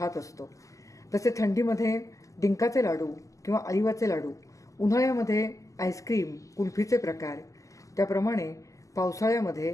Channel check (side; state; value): right; late; 0.16 ms